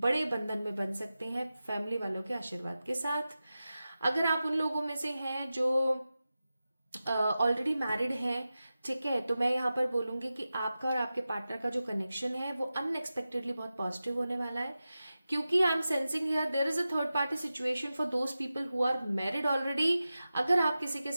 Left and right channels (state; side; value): inverted; both; correlation -0.94